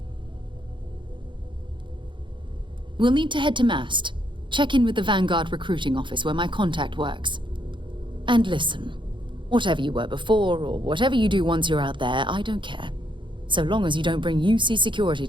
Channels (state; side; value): late; left; 0.23 ms